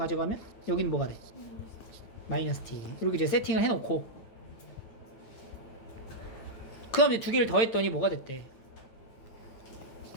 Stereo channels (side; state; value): right; late; 8.9 ms